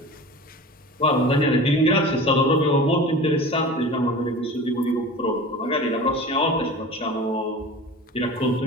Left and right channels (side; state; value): both; normal; correlation 0.36